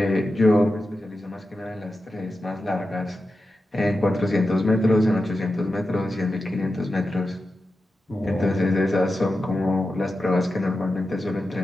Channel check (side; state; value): both; normal; correlation 0.91